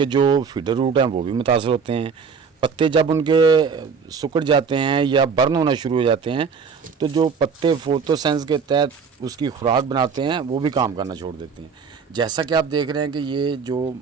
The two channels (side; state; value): left; quieter; 5.9 dB